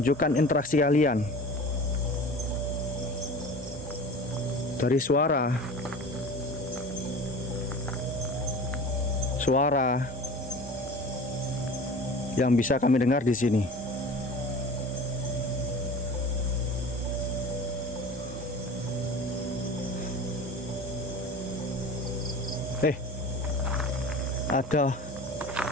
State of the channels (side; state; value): both; normal; correlation 0.38